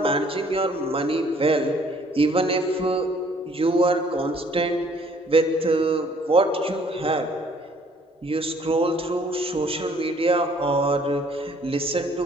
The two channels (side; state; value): both; normal; correlation 0.60